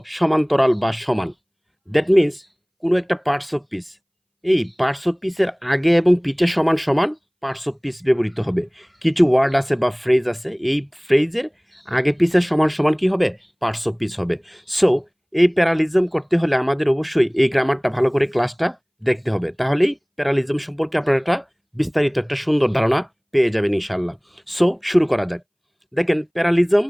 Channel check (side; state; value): both; identical; correlation 1.00